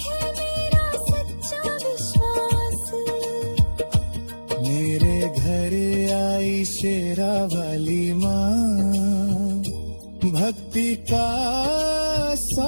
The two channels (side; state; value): both; inverted; correlation -1.00